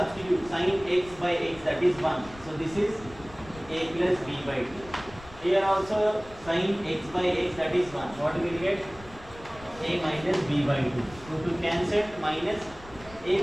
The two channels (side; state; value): left; noise; rumble, 19 dB below the sound